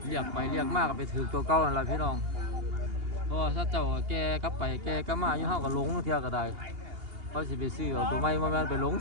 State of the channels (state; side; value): late; left; 2.8 ms